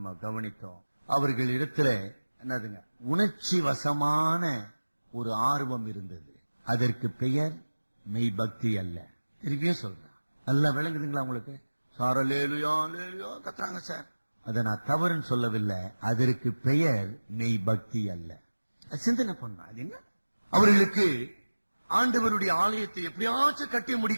கவனித்தோம். அவர்கள் இடத்துல என்னதுங்க, உணர்ச்சி வசமான ஒரு ஆர்வம் இருந்தது. அதற்கு பெயர் மெய் பக்தி அல்ல. திருப்பியும் சொல்றேன், நல்லா விளங்குதுங்களா உங்களுக்கு? சாரலேலுயா லேலுயா கத்துறாங்க சார். அதை நான் தவறுன்னு சொல்லவில்லை. அதற்கு பெயர் மெய் பக்தி அல்ல. சிந்தனை பண்ண அது என்ன? அவர்களுக்கு ஆண்டவருடைய ஆலயத்தை எப்படியாச்சும் கட்டி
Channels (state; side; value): inverted; both; correlation -1.00